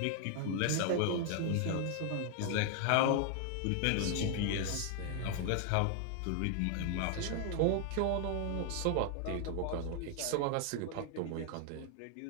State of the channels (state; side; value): different; both; correlation 0.00